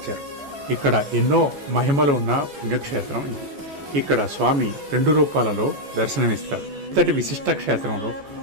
ఇక్కడ ఎన్నో మహిమలు ఉన్న పుణ్యక్షేత్రం ఇది. ఇక్కడ స్వామి 2 రూపాలలో దర్శనమిస్తారు. ఇంతటి విశిష్ట క్షేత్రంలో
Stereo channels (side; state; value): left; late; 14 ms